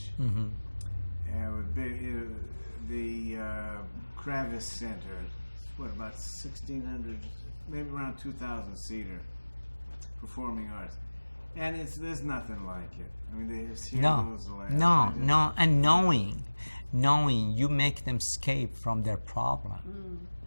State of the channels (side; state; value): both; inverted; correlation -1.00